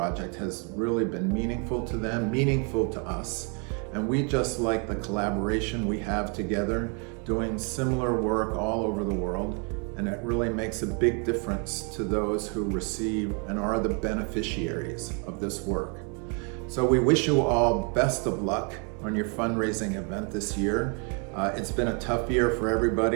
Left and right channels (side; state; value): left; quieter; 36.5 dB